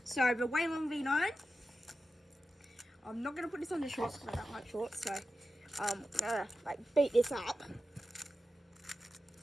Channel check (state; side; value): normal; both; correlation 0.92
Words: So, the Whalen V9. I'm not going to put this on the shorts because I don't like shorts, so I'm going to like beat this up.